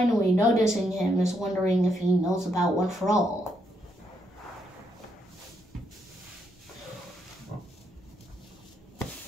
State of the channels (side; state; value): both; normal; correlation 0.77